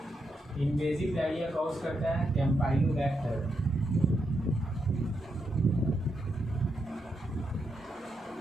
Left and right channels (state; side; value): normal; both; correlation 0.83